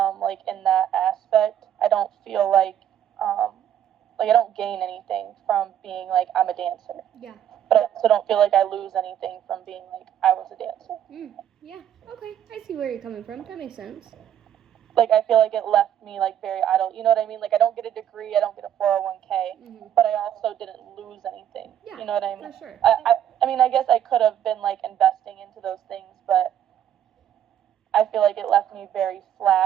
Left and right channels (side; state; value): left; quieter; 10.3 dB